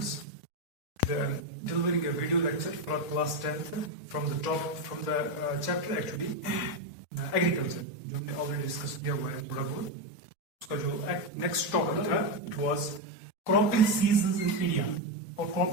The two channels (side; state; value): right; late; 3.7 ms